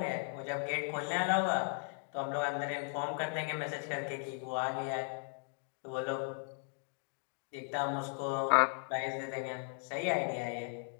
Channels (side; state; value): right; silent; 53 dB below the other